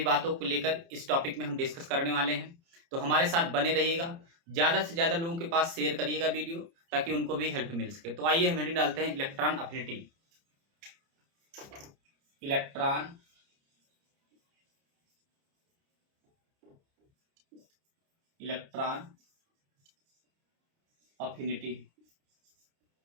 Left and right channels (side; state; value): left; late; 30 ms